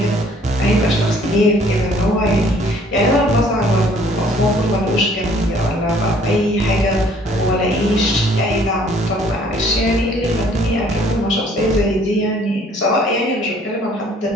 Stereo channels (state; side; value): normal; both; correlation 0.58